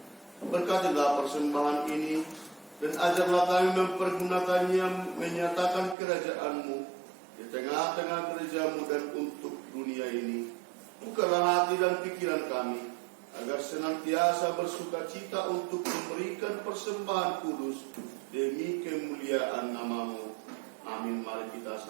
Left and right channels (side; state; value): left; drops out; at 6.0 s